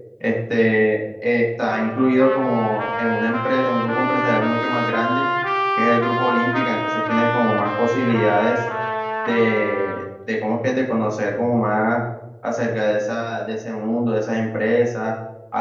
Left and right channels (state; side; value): identical; both; correlation 1.00